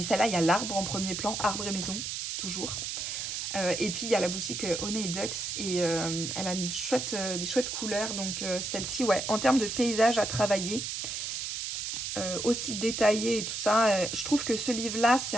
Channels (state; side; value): noise; right; hiss, 4 dB below the sound